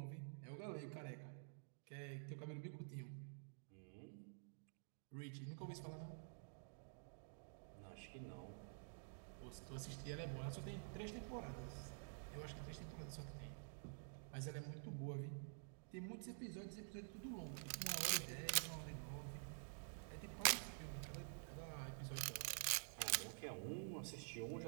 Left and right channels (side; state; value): left; silent; digital silence